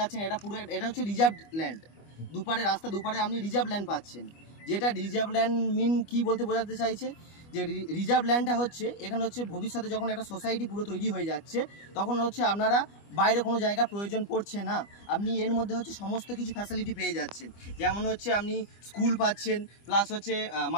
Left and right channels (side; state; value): right; late; 25 ms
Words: এটা হচ্ছে রিজার্ভ ল্যান্ড। দুপারে আপনি রিজার্ভ ল্যান্ড পাচ্ছেন। যেটা রিজার্ভ ল্যান্ড মিন কি বলতে বোঝাতে চাইছে যে রিজার্ভ ল্যান্ডটা হচ্ছে এখানে হচ্ছে ভবিষ্যতে যখন একটা সোসাইটি পুরো তৈরি হয়ে যাচ্ছে তখন হচ্ছে আপনারা বাইরে কোনো জায়গা প্রয়োজন পড়ছে না, আপনি এর মধ্যে হচ্ছে সমস্ত কিছু ফ্যাসিলিটি পেয়ে যাচ্ছেন। যেমন হচ্ছে আপনি স্কুল পাচ্ছেন, প্লাস হচ্ছে